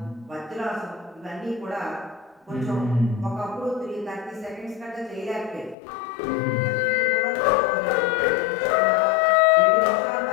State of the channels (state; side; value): drops out; right; at 5.8 s